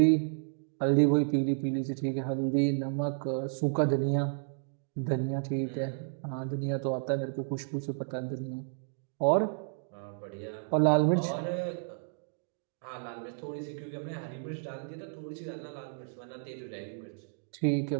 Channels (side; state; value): left; silent; digital silence